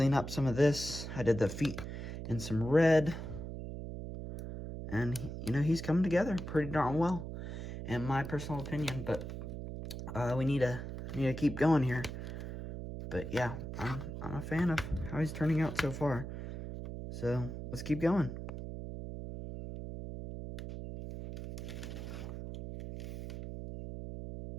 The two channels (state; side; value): noise; right; hum, 7 dB below the sound